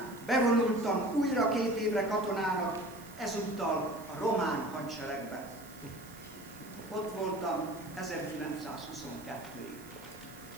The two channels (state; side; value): noise; right; hiss, 21 dB below the sound